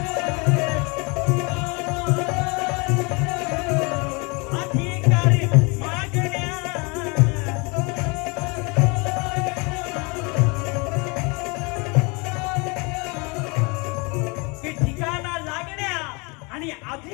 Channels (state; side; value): quieter; right; 29.6 dB